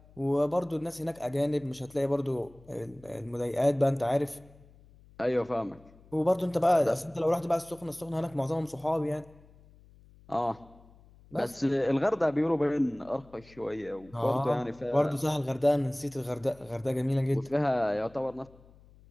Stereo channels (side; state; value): left; noise; hum, 25 dB below the sound